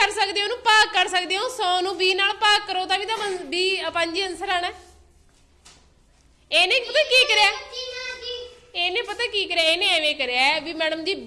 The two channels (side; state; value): both; identical; correlation 1.00